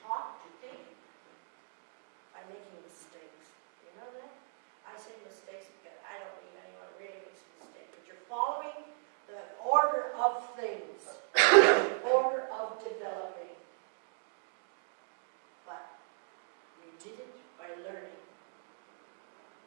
talk, to think by making mistakes. You know that? I say mistakes because I don't believe anyone really makes a mistake. But you're following the order of things, the order of developing. But you did it by learning.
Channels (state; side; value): silent; left; digital silence